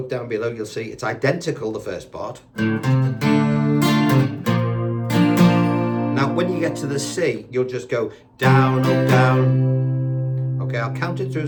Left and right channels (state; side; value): identical; both; correlation 1.00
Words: down below, you'll see it's identical, the first part. Now, when you get to the C, you'll just go down, up, down. Okay, I'll count it through